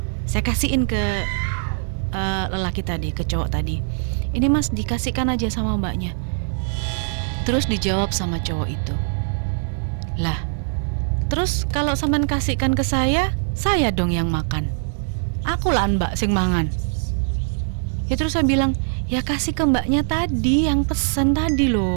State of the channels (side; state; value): left; silent; digital silence